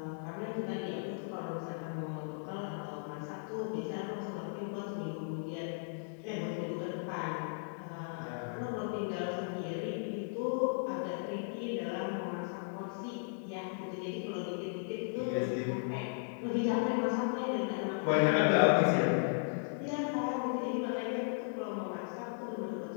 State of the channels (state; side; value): silent; right; digital silence